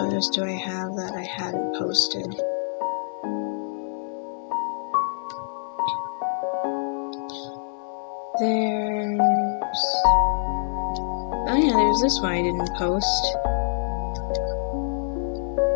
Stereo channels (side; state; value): right; silent; 61 dB below the other